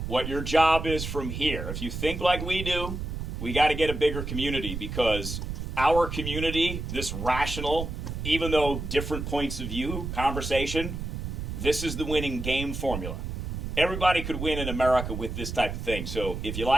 What your job is from here, if you think like we do, we got to get a bigger community, because our community, this rational, even though different points of view, conversation, this is the winning game formula. Everybody could win in America with this type of thing. So if you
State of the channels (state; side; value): noise; right; rumble, 5 dB below the sound